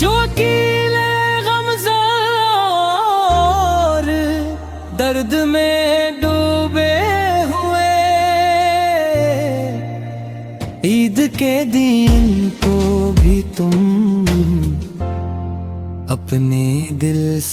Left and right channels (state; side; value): identical; both; correlation 1.00